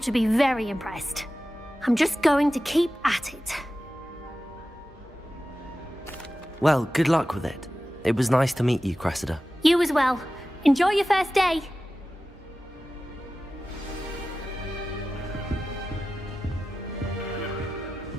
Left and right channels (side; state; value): both; normal; correlation 0.94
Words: be very impressed. I'm just going to keep at it. Well, good luck with it. It was nice to meet you, Cressida. You as well. Enjoy your first day.